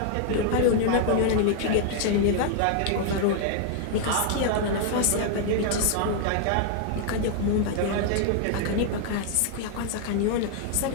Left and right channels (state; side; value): different; both; correlation 0.00